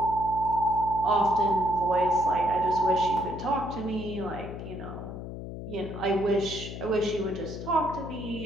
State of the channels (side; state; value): left; noise; hum, 9 dB below the sound